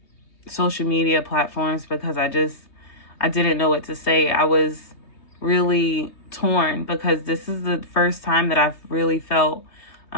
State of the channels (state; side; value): late; right; 3.3 ms